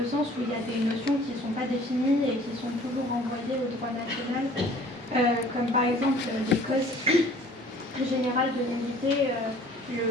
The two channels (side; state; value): both; normal; correlation 0.52